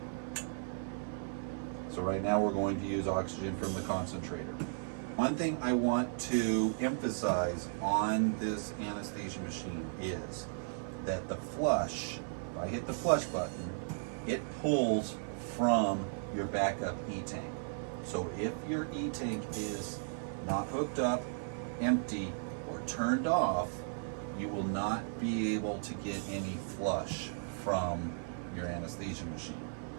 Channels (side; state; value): left; silent; 54 dB below the other